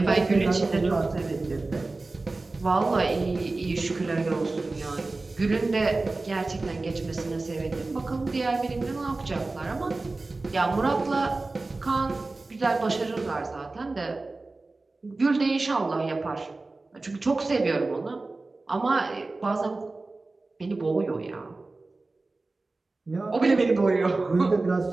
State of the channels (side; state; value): left; quieter; 3.4 dB